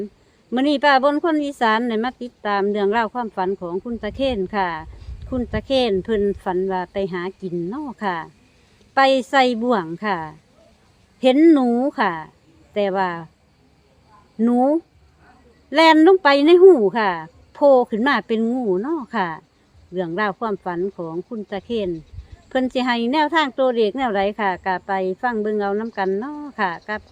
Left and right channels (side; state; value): both; identical; correlation 1.00